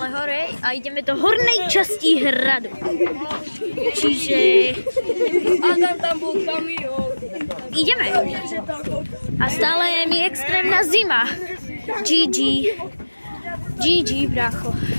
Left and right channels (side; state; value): both; inverted; correlation -1.00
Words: hore a ideme do hornej časti hradu. Čiže... Tam bol kamión. Ideme. A stále je mi extrémna zima. GG. GG, bracho.